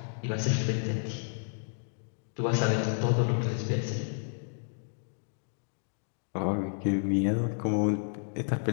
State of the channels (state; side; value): silent; right; digital silence